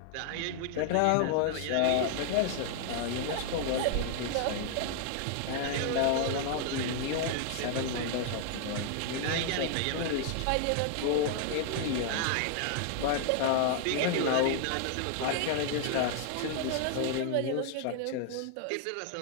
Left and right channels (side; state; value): both; different; correlation 0.00